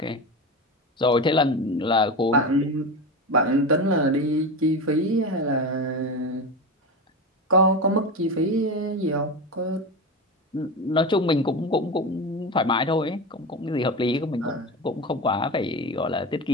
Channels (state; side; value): normal; both; correlation 0.23